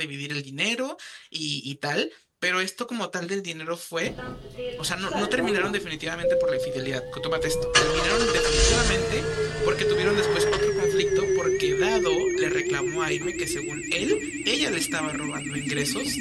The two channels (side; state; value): both; identical; correlation 1.00